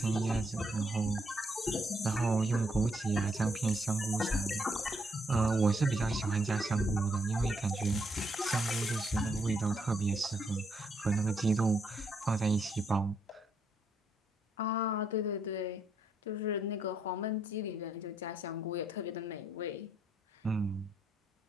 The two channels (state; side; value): normal; both; correlation 0.75